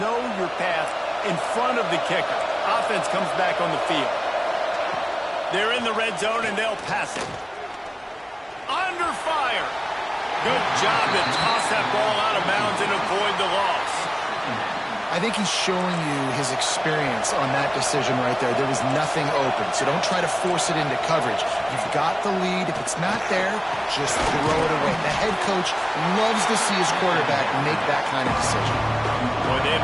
know your path in front of the kicker. Offense comes back on the field. They're in the red zone, and they'll pass it. Under fire. Good job to toss that ball out of bounds and avoid the loss. I think he's showing you his experience on that decision right there. There was nothing open, so don't try to force it into coverage. You've got the lead. If it's not there, just throw it away. The head coach loves to see his quarterback make that kind of decision. Boy, they'd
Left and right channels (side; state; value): both; identical; correlation 1.00